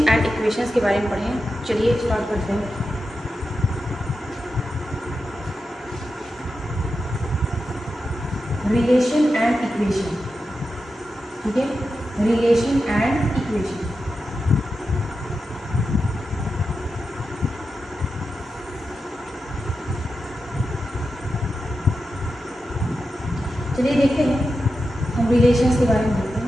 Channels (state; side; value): normal; both; correlation 0.90